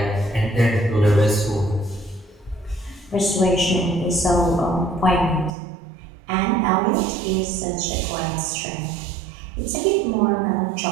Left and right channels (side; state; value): left; drops out; at 5.6 s